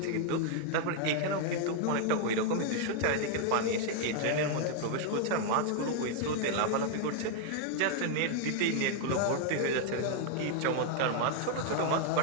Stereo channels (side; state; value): both; different; correlation 0.00